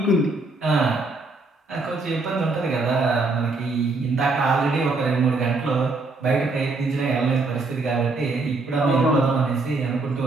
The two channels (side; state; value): left; quieter; 3.4 dB